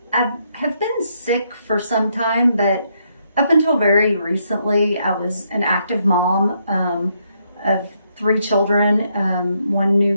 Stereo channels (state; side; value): inverted; both; correlation -0.75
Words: have been sick for some time, but up until very recently, I was an active mom of 3 children, 1 new